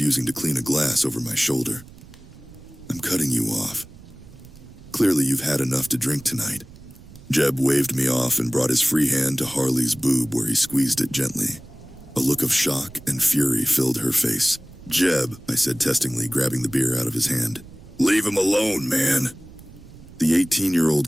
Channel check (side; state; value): right; noise; rumble, 20 dB below the sound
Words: using to clean a glass over my shoulder. I'm cutting you off. Clearly you've had enough to drink tonight. Jeb waved me off and brought his free hand to Harley's boob where he squeezed it gently. A look of shock and fury filled her face. Jeb, I said testingly, grabbing the beer out of his hand. Leave him alone, man. The